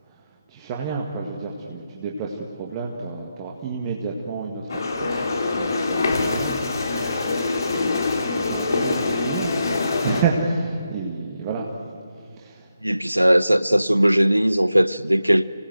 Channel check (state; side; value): inverted; both; correlation -0.86